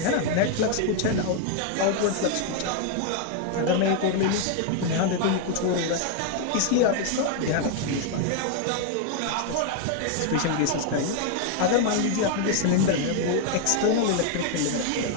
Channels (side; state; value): both; different; correlation 0.00